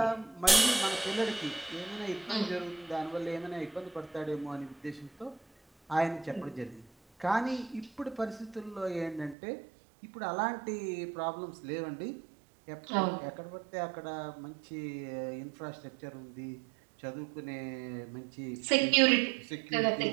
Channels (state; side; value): drops out; left; at 9.3 s